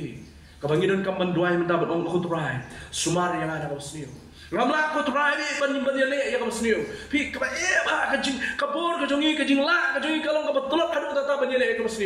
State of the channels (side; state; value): both; identical; correlation 1.00